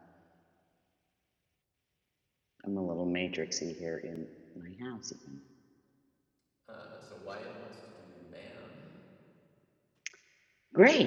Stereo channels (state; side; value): identical; both; correlation 1.00